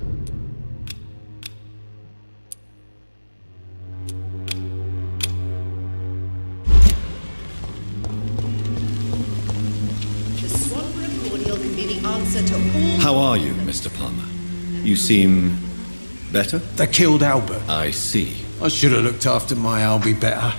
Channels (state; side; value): inverted; both; correlation -1.00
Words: How are you, Mr. Palmer? You seem better? They killed Albert. I see. I should have looked after my Albie better.